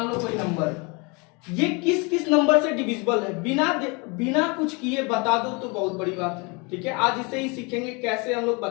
लो कोई नंबर है, ये किस किस नंबर से डिविजिबल है, बिना कुछ किए बता दो तो बहुत बड़ी बात है। ठीक है, आज इसे ही सीखेंगे कैसे हम लोग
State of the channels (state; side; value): quieter; right; 29.7 dB